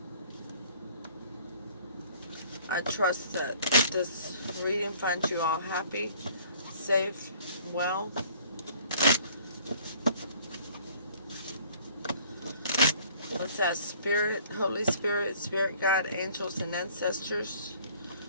I trust that this reading finds you all happy, safe, well. Let's ask Spirit, Holy Spirit, Spirit Guide, angels, and ancestors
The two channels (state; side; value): inverted; both; correlation -0.55